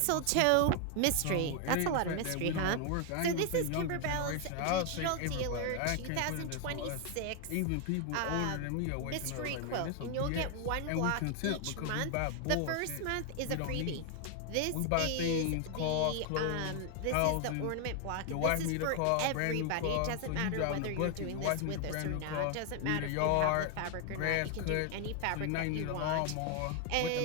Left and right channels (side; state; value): both; different; correlation 0.00